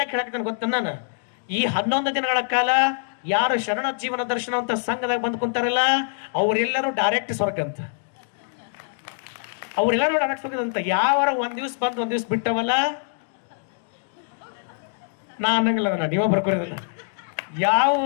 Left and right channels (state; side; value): silent; right; digital silence